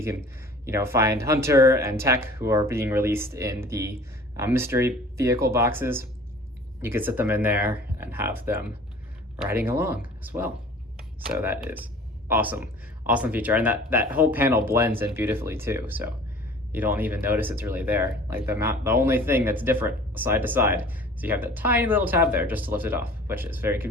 can, find Hunter and Tech, who are being released in the mystery vehicle boxes. You could sit them in there and have them riding along as well. So that is awesome, awesome feature. And that whole panel blends in beautifully too. So you don't even notice it's really there. Like the only thing that's different side to side is you have that tiny little tab there just to lift it off, which is very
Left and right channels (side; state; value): both; normal; correlation 0.46